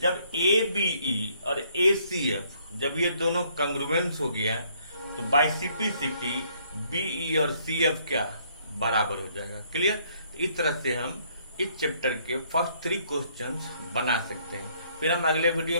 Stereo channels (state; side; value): inverted; both; correlation -0.66